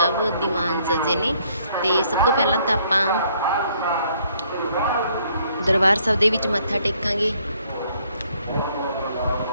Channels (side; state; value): both; inverted; correlation -0.66